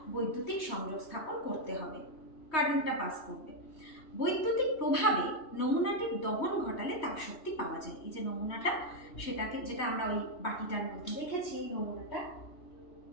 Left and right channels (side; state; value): right; late; 3.2 ms